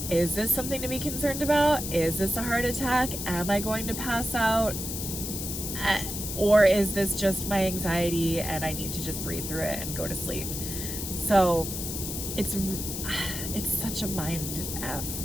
is this something to be concerned about? Is this a heart attack? Am I going to pass out? Or is this just my anxiety and I need to just breathe through it and go to sleep? So it's such a mind F.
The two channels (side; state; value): left; noise; hiss, 5 dB below the sound